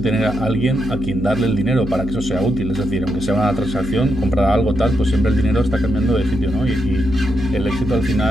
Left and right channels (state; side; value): noise; right; hum, 9 dB below the sound